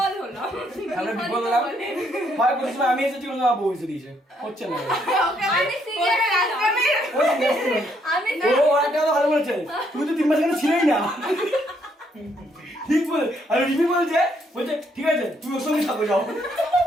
হলাম। আমরা বিপদ হলাম, হয় কোনো সময় আমি এসেছি, কোনো সময় বউ এসে দিয়েছে, হচ্ছে না। আমি সিরিয়াস আমি ও একটা কথা ভালো বলেছে, তুমি তো 3 মাস এখানে ছিলেই না। ঠিক বলে, আর রিমি বলছে ঠিক আছে তুমি ওর সঙ্গে থাকো, যাও।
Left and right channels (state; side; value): normal; both; correlation 0.72